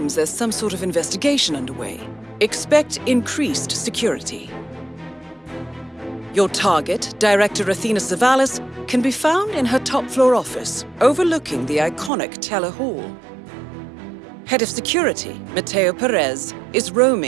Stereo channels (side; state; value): left; drops out; at 12.1 s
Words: there's some sort of investigation underway. Expect increased security. Your target, Director Athena Savalas, can be found in her top-floor office, overlooking the iconic Teller Hall. Head of Security, Mateo Perez, is